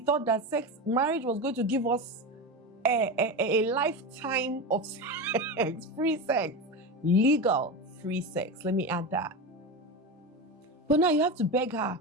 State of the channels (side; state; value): both; normal; correlation 0.21